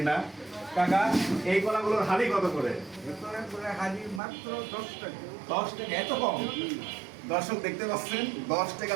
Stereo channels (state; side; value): drops out; left; at 4.2 s